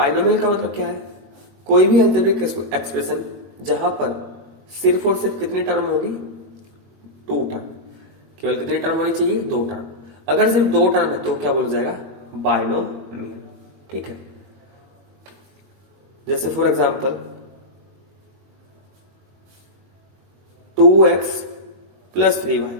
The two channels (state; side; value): late; left; 21 ms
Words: का मतलब क्या है, कोई भी एल्जेब्रिक एक्सप्रेशन जहां पर सिर्फ और सिर्फ कितनी टर्म होगी, 2 टर्म। केवल कितनी टर्म होनी चाहिए, 2 टर्म। अगर सिर्फ 2 टर्म है तो क्या बोला जाएगा, बाइनोमियल। ठीक है, जैसे for example 2x plus 3y।